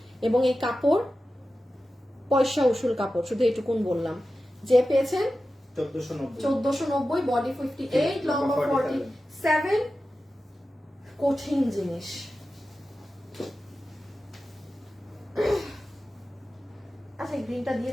এবং এই কাপড় পয়সা উসুল কাপড়, শুধু এটুকুন বললাম। যে পেয়েছেন 1490, বডি 58 লম্বা 47, কঠিন জিনিস। আচ্ছা গ্রিনটা দিয়ে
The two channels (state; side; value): normal; both; correlation 0.93